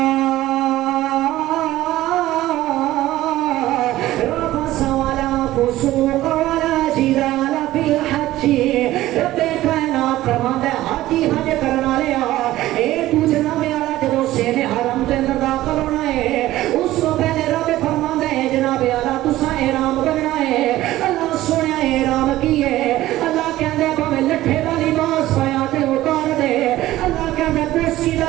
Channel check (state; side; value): quieter; left; 15.6 dB